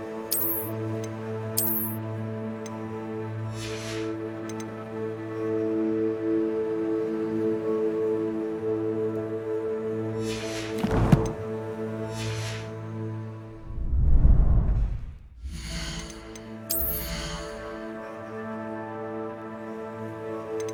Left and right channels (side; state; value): both; identical; correlation 1.00